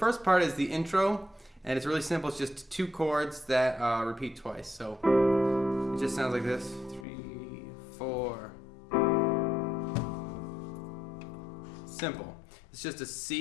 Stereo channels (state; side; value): drops out; right; at 7.1 s